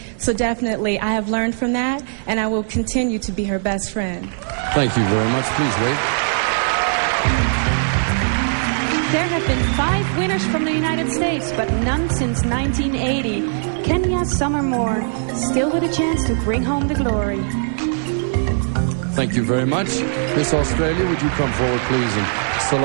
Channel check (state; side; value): silent; left; 63 dB below the other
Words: So definitely I have learned from that, and I will continue to be her best friend. Thank you very much. Please wait. There have been 5 winners from the United States, but none since 1980. Kenya Summer Moore, still with a chance to bring home the glory. Thank you very much. Miss Australia, would you come forward, please, and